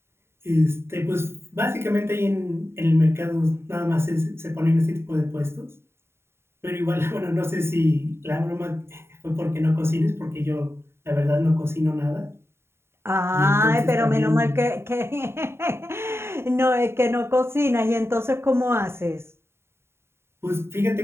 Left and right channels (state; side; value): late; left; 0.12 ms